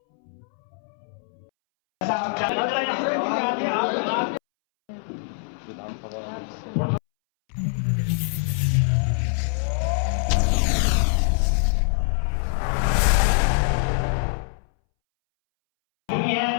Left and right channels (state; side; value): silent; right; 63 dB below the other